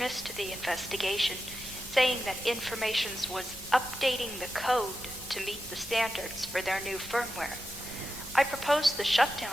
the investigation, saying that Informations was updating the code to meet the standards for their new firmware. I proposed the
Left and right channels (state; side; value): noise; right; rumble, 20 dB below the sound